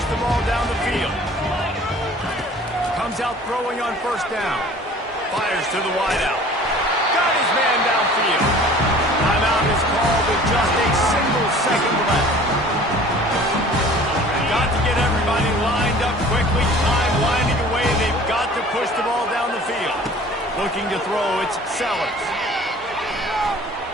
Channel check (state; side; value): normal; both; correlation 0.47